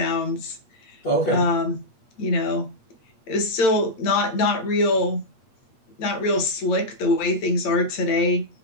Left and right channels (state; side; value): late; right; 8.5 ms